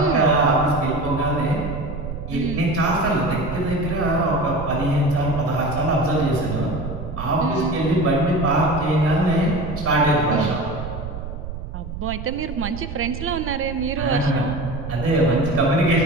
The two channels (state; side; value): noise; right; rumble, 8 dB below the sound